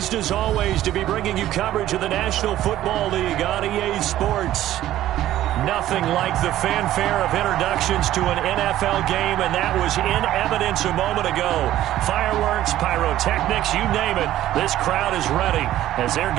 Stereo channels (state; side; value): quieter; left; 13.5 dB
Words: as always to be bringing you coverage of the National Football League on EA Sports. Nothing like the fanfare of introductions to an NFL game, and that was in evidence a moment ago. Fireworks, pyrotechnics, you name it, this crowd is ready as their